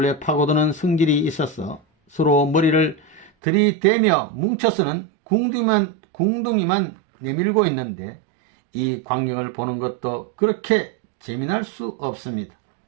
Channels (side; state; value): left; drops out; at 3.3 s